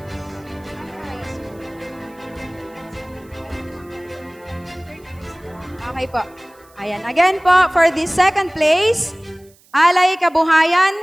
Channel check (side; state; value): right; noise; hiss, 30 dB below the sound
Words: okay po. Ayan. Again po, for the second place, Alay